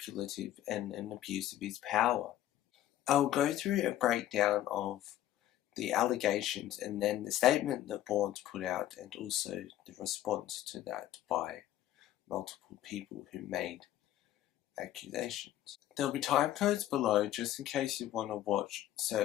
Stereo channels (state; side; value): quieter; right; 13.0 dB